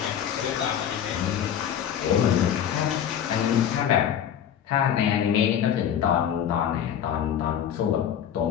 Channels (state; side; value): quieter; right; 9.4 dB